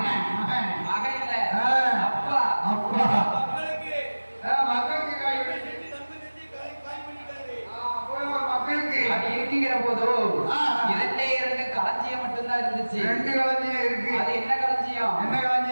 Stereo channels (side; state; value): both; inverted; correlation -1.00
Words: மகன் இல்ல, அப்பா. அப்பா மக்களுக்கு அப்படி இருக்கிற போது 2 களஞ்சியம் மட்டும்தான் இருந்துச்சு. 2 களஞ்சியம் இருக்கு. அது என்ன களஞ்சியம்? என்ன